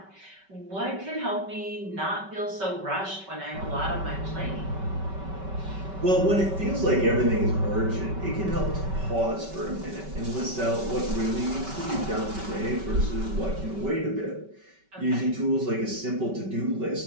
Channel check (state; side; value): late; left; 5.2 ms